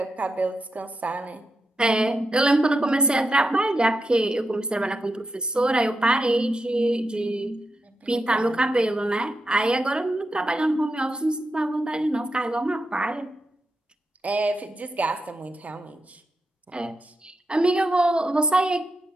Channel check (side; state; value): both; normal; correlation 0.86